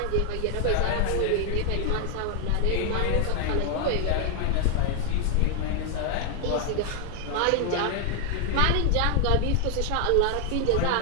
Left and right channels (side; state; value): both; different; correlation 0.00